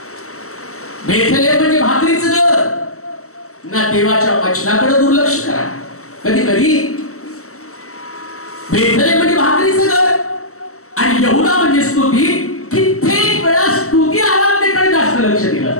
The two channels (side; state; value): right; late; 0.64 ms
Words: बेथेलहेम म्हणजे भाकरीचं घर ना, देवाच्या वचनाकडे दुर्लक्ष करा. कधी कधी बेथेलहेम म्हणजे भाकरीचं घर आणि यहुदा म्हणजे स्तुती. कित्येक वेळा स्तुती आराधनेकडे जास्त लक्ष दिलं